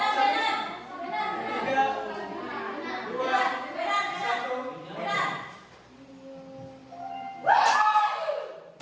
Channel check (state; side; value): identical; both; correlation 1.00